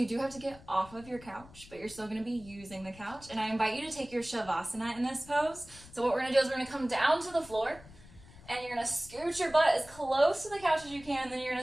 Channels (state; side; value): noise; left; rumble, 20 dB below the sound